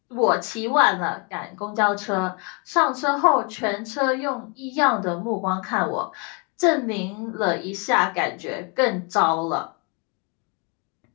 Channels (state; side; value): quieter; right; 33.3 dB